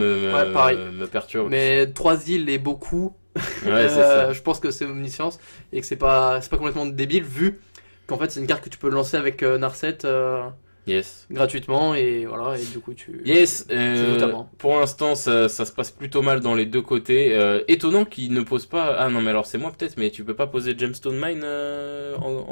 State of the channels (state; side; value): inverted; both; correlation -1.00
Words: pareil. me perturbe. Mais 3 îles et beaucoup. Ouais, c'est ça. Je pense que c'est Omniscience et que c'est pas complètement débile vu qu'en fait c'est une carte que tu peux lancer avec Narset Yes. gratuitement et voilà, et du coup tu... Yes, notamment. pour l'instant ça se passe plutôt mal dans les deux côtés. Étonnant qu'il ne pose pas... Ah non mais alors c'est moi peut-être, mais tu peux pas poser Gemstone Mine